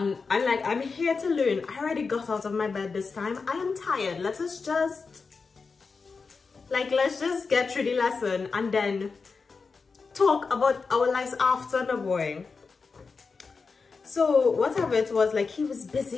here to learn. I already got out of my bed this time. I am tired. Let's just get through the lesson and then talk about our lives after the boring. So whatever it was, like he was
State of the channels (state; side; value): quieter; right; 4.7 dB